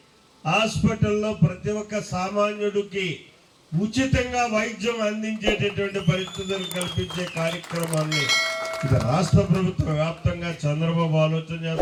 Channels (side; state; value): both; identical; correlation 1.00